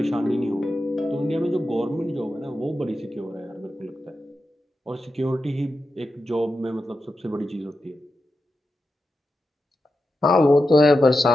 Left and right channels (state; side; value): normal; both; correlation 0.90